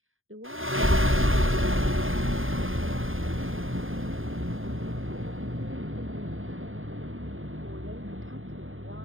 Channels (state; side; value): late; left; 0.59 ms